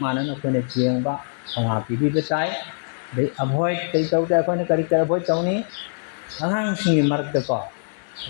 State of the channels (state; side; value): silent; right; digital silence